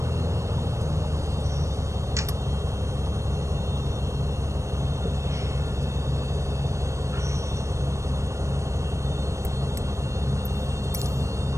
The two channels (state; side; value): late; left; 0.15 ms